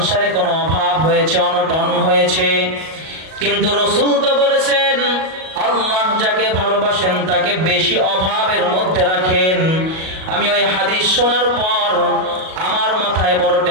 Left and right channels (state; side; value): late; left; 38 ms